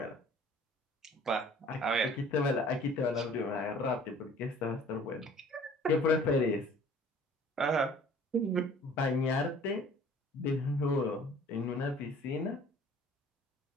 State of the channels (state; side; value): normal; both; correlation 0.51